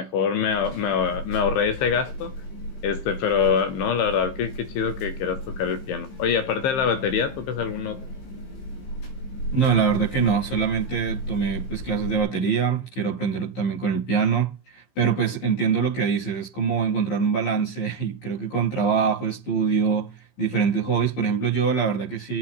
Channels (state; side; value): late; right; 15 ms